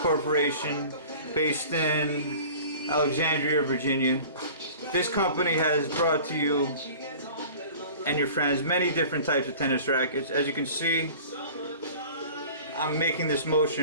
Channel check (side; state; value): both; inverted; correlation -0.43